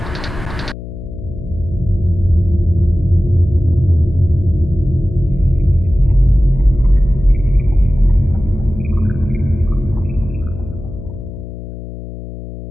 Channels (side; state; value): left; noise; hum, 11 dB below the sound